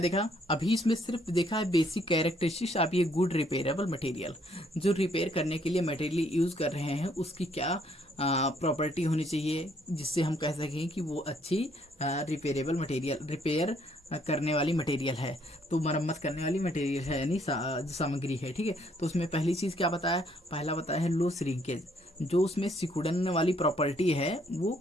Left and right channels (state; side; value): normal; both; correlation 0.67